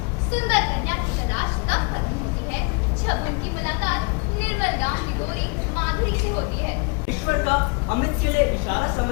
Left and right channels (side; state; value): right; quieter; 32.3 dB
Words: सुंदर कन्या की तलाश तब खत्म होती है जब उनकी मुलाकात निर्मल गांव की गोरी माधुरी से होती है। ईश्वर का अमित के लिए इशारा